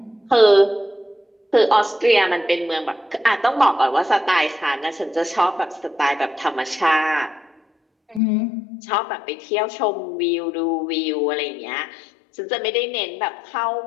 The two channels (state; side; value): drops out; right; at 8.2 s